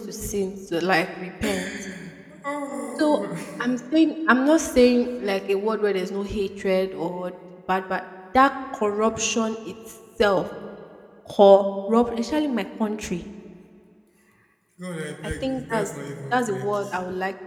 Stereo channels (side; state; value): both; identical; correlation 1.00